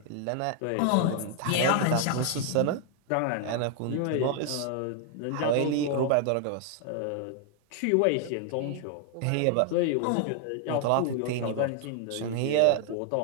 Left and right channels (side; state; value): both; different; correlation 0.00